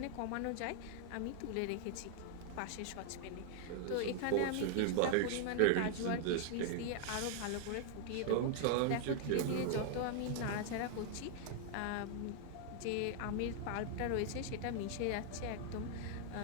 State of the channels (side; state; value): both; different; correlation 0.00